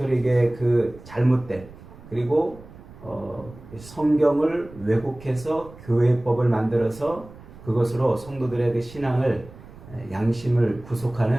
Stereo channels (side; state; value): right; noise; rumble, 19 dB below the sound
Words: 그 잘못된 그리고 성경을 왜곡해서 교회법을 만들어서 그것으로 성도들의 그 신앙을 양심을